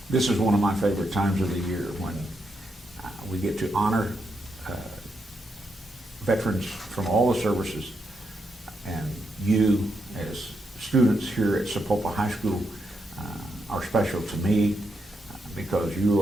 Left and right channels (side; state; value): both; normal; correlation 0.82